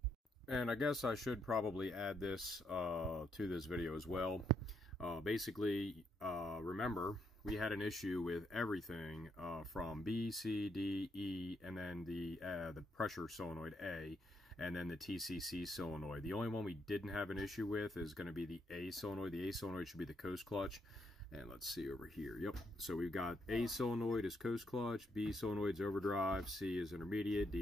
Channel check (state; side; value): normal; both; correlation 0.76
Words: And I guess I should probably add this to this video as well. Basically, remember, we had an issue with everything from B, C, D, E, and then the pressure solenoid A. and then the TCC solenoid. The only one we didn't have an issue with is going to be the A solenoid. The A solenoid should be the coast clutch. And let's see over here. Yep. So we've got A solenoid is coast clutch, B solenoid is overdrive, C is intermediate,